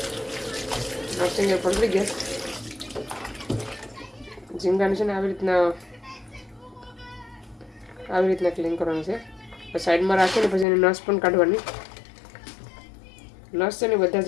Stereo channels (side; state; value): right; drops out; at 10.7 s